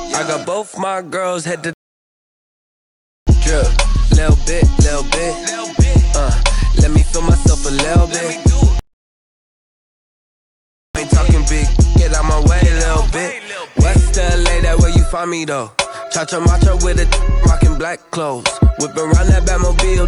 got both my girls head to drip, little bit. Let me feel myself a little bit. I ain't talking big, get out my way a little bit. West LA, that where you find me though. Cha-cha macho with a rockin' black clothes. Whip around that Batmobile,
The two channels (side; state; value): both; identical; correlation 1.00